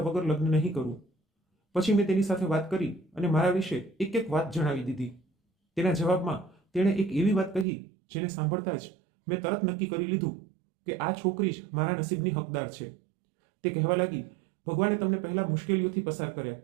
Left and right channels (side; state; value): left; drops out; at 7.7 s